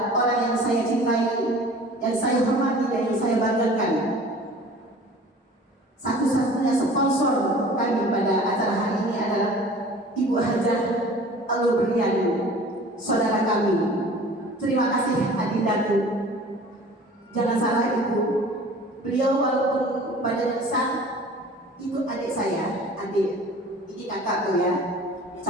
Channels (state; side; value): normal; both; correlation 0.45